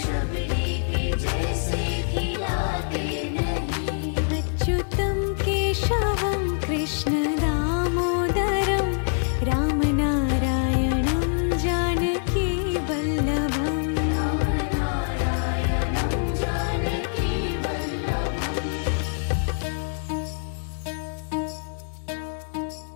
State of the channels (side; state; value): right; silent; 62 dB below the other